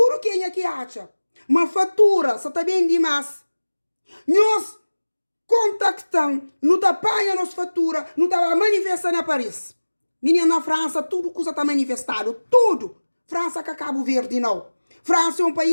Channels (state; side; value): inverted; both; correlation -1.00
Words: quem é que acha. Uma fatura, só está bem demais. Nós contactamos, não está apanha nossa fatura, não está manifestando na Paris. Menina, na França, tudo coisa está manifestado. Tudo. França que Cabo Verde, não. França é um